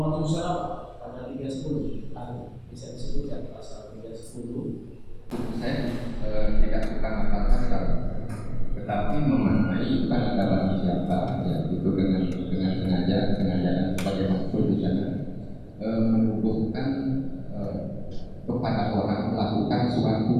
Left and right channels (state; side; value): identical; both; correlation 1.00